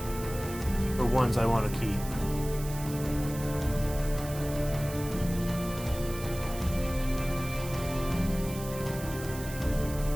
For ones I want to keep.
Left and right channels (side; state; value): right; noise; hiss, 13 dB below the sound